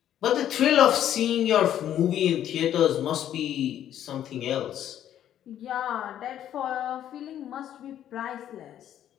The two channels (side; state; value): right; quieter; 10.9 dB